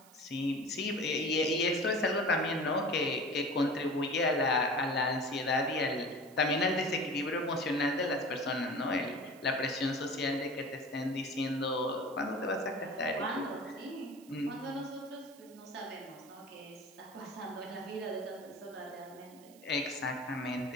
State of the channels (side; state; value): right; noise; hiss, 24 dB below the sound